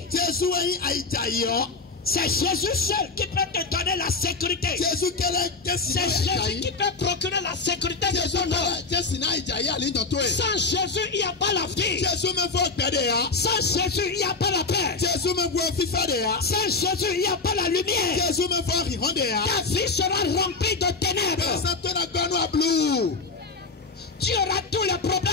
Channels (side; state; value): right; quieter; 4.1 dB